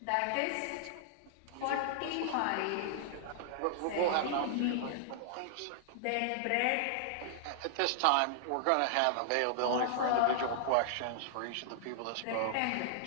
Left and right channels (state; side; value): different; both; correlation -0.01